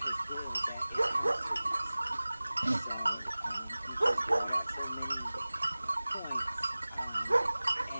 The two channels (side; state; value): both; inverted; correlation -0.99